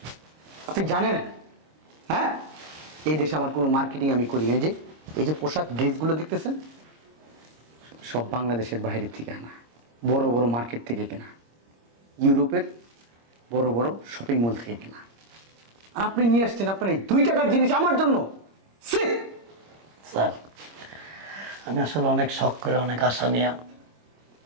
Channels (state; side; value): late; left; 26 ms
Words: আপনি জানেন, হ্যাঁ, এই দেশে আমার কোনো মার্কেটিং আমি করি না। এই যে পোশাক ড্রেসগুলো দেখতেছেন, সব বাংলাদেশের বাইরের থেকে আনা, বড় বড় মার্কেট থেকে কেনা, ইউরোপের বড় বড় শপিং মল থেকে কেনা। আর আপনি নিয়ে আসছেন আপনার এই 2 টাকার জিনিস আমার জন্য। স্যার আমি আসলে অনেক শখ করে, অনেক আশা নিয়ে,